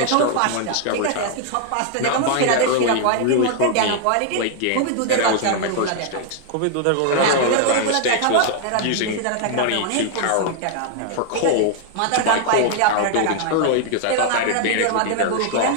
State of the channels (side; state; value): both; different; correlation 0.00